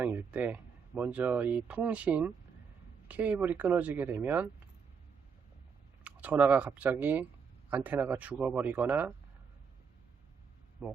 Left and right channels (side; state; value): left; quieter; 6.3 dB